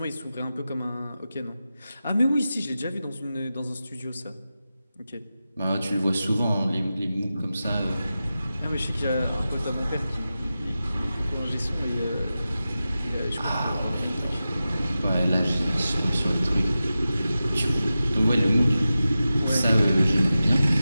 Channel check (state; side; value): inverted; both; correlation -0.93